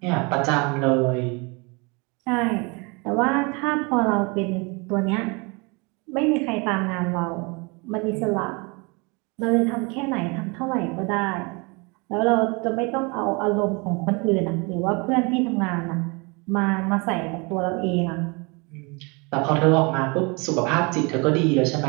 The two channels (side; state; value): left; quieter; 29.4 dB